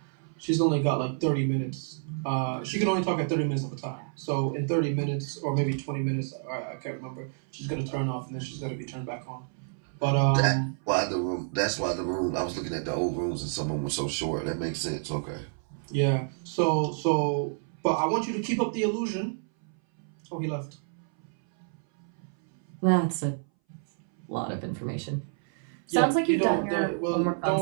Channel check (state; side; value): silent; left; 59 dB below the other